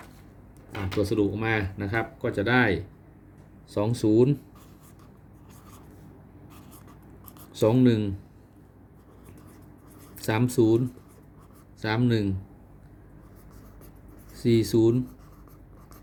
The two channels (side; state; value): both; identical; correlation 1.00